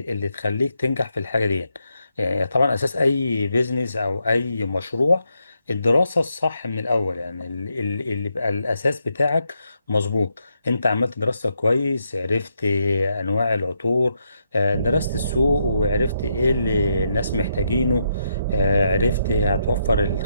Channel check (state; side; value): inverted; both; correlation -0.80